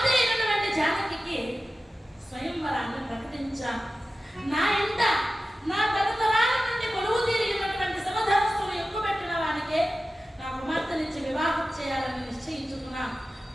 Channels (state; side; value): normal; both; correlation 0.95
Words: అయినటువంటి జానకి స్వయంవరాన్ని ప్రకటించాను. నా ఇంట నా తరతరాల నుండి కొలువు తీరినటువంటి సమధనస్సును ఎక్కుపెట్టిన వానికే నా కుమార్తెనిచ్చి వివాహం చేయాలని నిశ్చయించుకున్నాను.